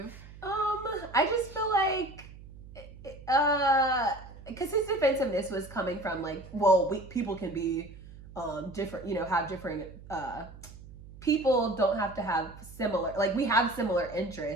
I just feel like, because his defensiveness was coming from like, well, people can be, different, have different, people don't have to have similar, like we have similar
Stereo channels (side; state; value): right; noise; hum, 17 dB below the sound